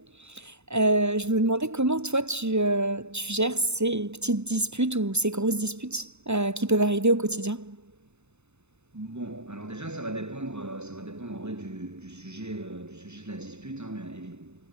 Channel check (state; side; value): late; left; 0.81 ms